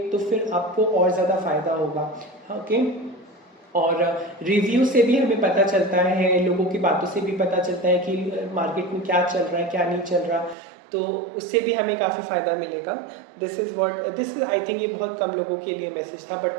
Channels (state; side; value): drops out; left; at 10.6 s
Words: तो फिर आपको और ज़्यादा फ़ायदा होगा। ओके, और रिव्यू से भी हमें पता चलता है, लोगों की बातों से भी पता चलता है कि मार्केट में क्या चल रहा है क्या नहीं चल रहा, तो उससे भी हमें काफ़ी फ़ायदा मिलेगा। दिस इज़ आई थिंक ये बहुत कम लोगों के लिए मैसेज था, बट